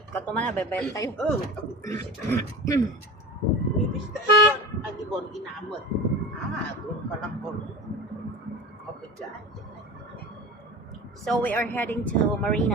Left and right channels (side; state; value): both; normal; correlation 0.32